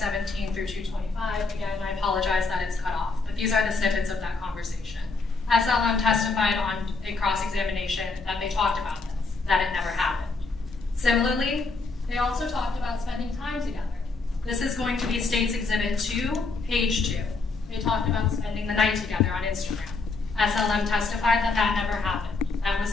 through 225. Again, I apologize that it's cut off, but these are the snippets of that conversation. SLM testified on a cross-examination that they talked about this, that it never happened. Similarly, they also talked about spending time together. This is going to be State's Exhibit 2, page 2. They talked about spending the night together on Instagram. SLM testified that that never happened. That was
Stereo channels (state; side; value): quieter; right; 3.9 dB